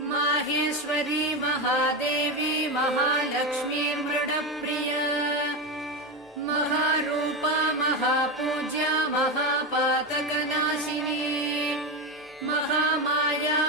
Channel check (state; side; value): normal; both; correlation 0.15